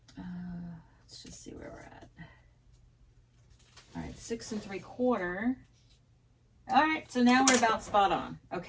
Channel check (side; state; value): both; identical; correlation 1.00